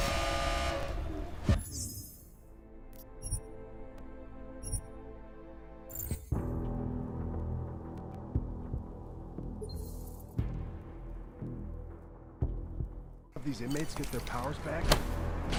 These inmates get their powers back,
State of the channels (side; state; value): both; identical; correlation 1.00